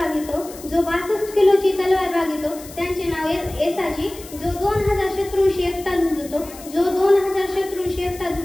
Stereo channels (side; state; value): left; noise; hiss, 17 dB below the sound